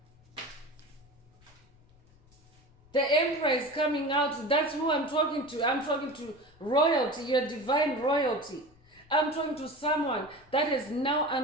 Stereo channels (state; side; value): noise; left; rumble, 29 dB below the sound